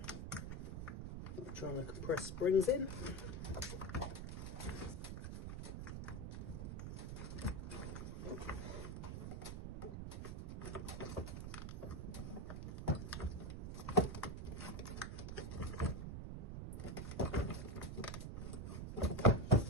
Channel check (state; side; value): noise; right; rumble, 5 dB below the sound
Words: I'm trying to compress springs in.